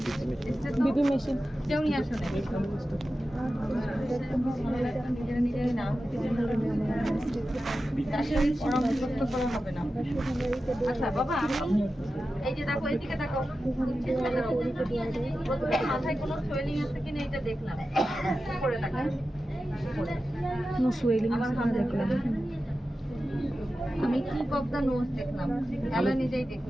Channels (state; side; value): normal; both; correlation 0.93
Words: BP machine কেউ নিয়ে আসো না, নিজেরা না আসলে পরামর্শ করা হবে না। আচ্ছা বাবা, আমি এই যে দেখো এদিকে দেখো, প্রথমে মাথায় কোনো সোয়েলিং আছে কিনা এটা দেখলাম, করে দেখেন নো সুয়েলিং আমার হাত দেখলাম, আমি কি অফ দ্য নোজ দেখলাম, তাহলে নিজেই